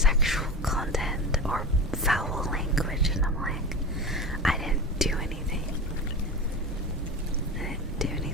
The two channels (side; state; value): both; normal; correlation 0.28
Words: content or foul language, and I'm like, I didn't do anything. I didn't do